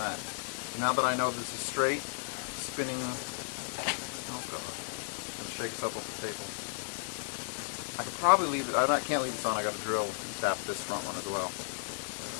that? Now that I know this is straight, spinning, oh God, I'm going to shake this up off the table. I could probably leave it, I can't leave this on, I got to drill and tap this front one as well.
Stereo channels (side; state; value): right; silent; 55 dB below the other